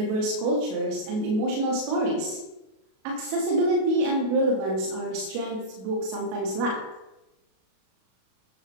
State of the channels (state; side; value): late; left; 37 ms